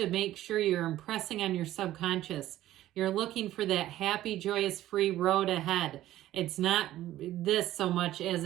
make sure you're impressing on your subconscious. You're looking for that happy, joyous, free road ahead. It's not this so much as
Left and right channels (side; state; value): left; quieter; 14.1 dB